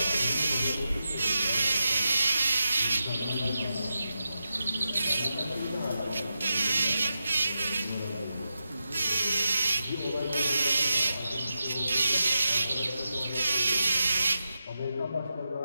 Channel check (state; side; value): inverted; both; correlation -0.89